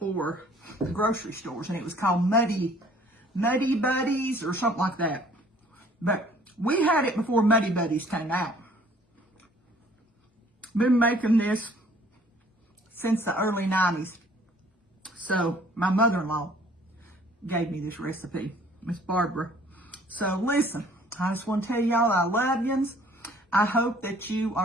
the grocery stores, and it was called Muddy Buddies or something like that. But We had it before Muddy Buddies came out. Been making this since the early 90s. So my mother-in-law gave me this recipe, Miss Barbara. So listen, I just want to tell y'all I love yous. I hope that you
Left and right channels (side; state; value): both; normal; correlation 0.56